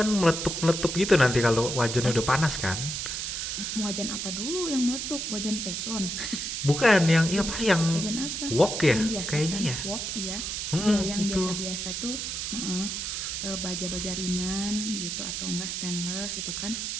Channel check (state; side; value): noise; right; hiss, 3 dB below the sound